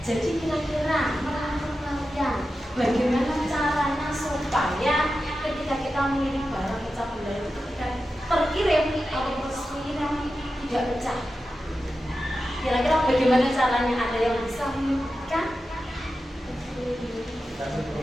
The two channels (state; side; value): normal; both; correlation 0.91